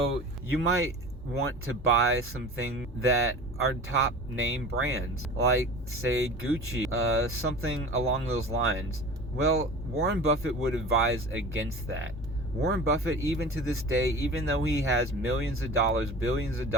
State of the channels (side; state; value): both; normal; correlation 0.37